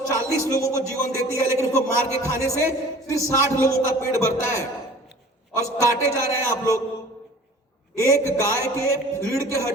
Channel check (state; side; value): normal; both; correlation 0.46